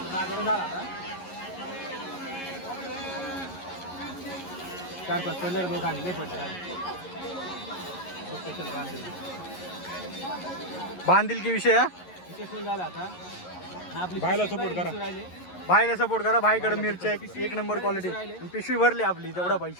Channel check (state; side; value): late; right; 11 ms